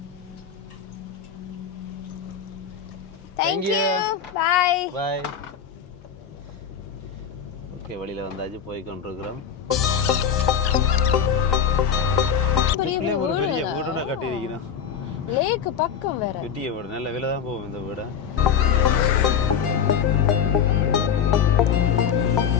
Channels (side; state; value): right; quieter; 7.5 dB